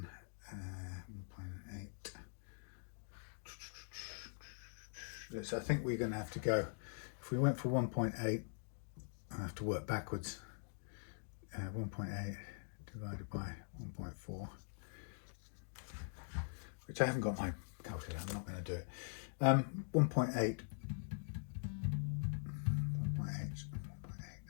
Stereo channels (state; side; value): silent; right; digital silence